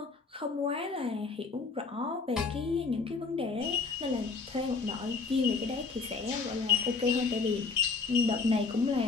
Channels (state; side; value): quieter; right; 4.5 dB